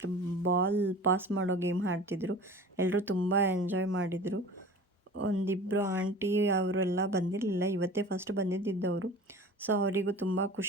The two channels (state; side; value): normal; both; correlation 0.39